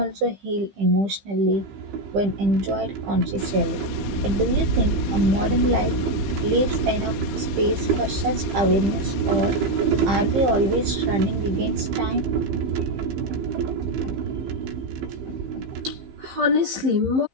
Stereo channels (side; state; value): left; late; 15 ms